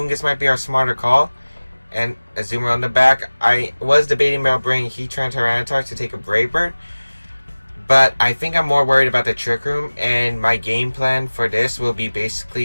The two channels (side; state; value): both; inverted; correlation -1.00